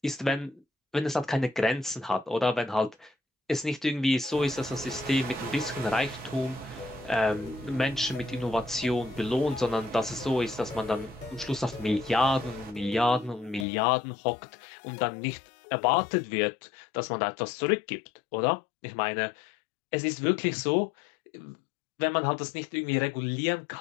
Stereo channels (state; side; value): drops out; right; at 13.7 s